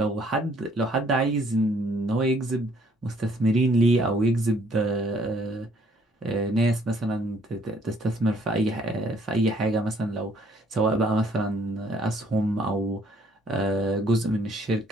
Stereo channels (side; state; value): both; normal; correlation 0.63